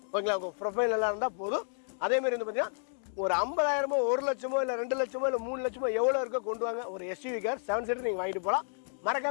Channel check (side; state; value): right; silent; digital silence